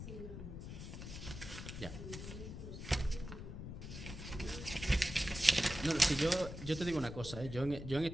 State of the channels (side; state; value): left; noise; rumble, 9 dB below the sound